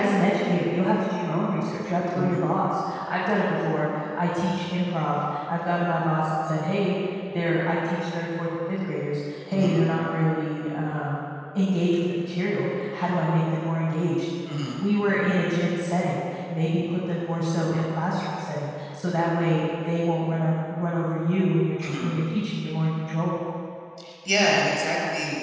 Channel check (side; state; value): both; identical; correlation 1.00